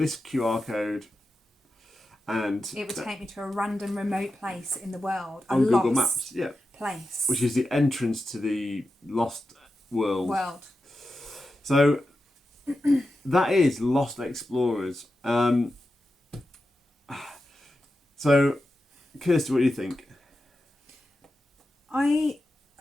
QR code, and it would take me to a random remote place in the world. A on Google lost Maps, yeah, place. which is the entrance to the lost world. World. So that is Lost Explorers. So, Kirsty, what do you think? I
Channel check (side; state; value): both; normal; correlation 0.91